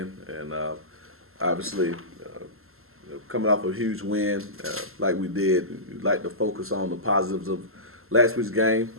and obviously coming off a huge win like we did, we'd like to focus on the positives of last week's game,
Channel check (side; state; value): left; late; 0.62 ms